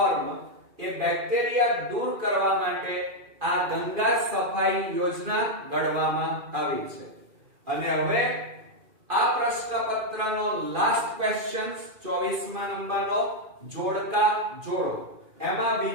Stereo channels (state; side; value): late; left; 2.4 ms